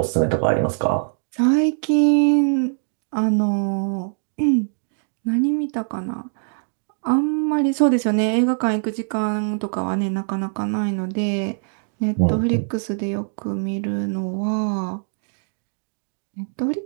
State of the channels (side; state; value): left; silent; digital silence